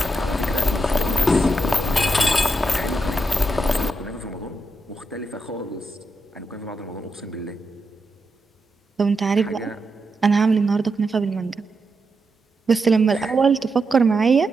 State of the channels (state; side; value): normal; both; correlation 0.85